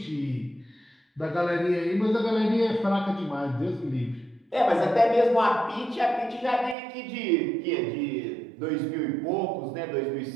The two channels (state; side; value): drops out; left; at 6.8 s